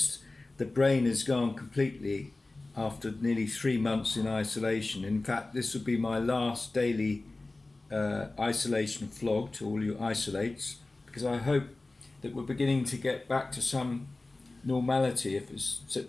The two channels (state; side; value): quieter; right; 3.1 dB